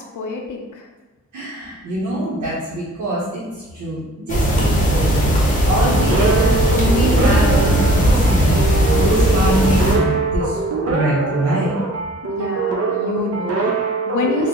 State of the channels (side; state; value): both; normal; correlation 0.52